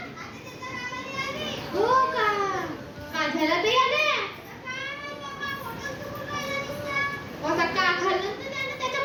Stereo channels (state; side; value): identical; both; correlation 1.00